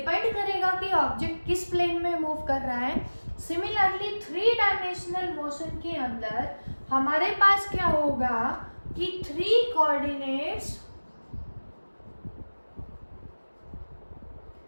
करेगा कि ऑब्जेक्ट किस प्लेन में मूव कर रहा है. सिमिलरली 3-डायमेंशनल मोशन के अंदर हमारे पास क्या होगा कि 3 कोऑर्डिनेट्स,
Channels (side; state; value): both; inverted; correlation -1.00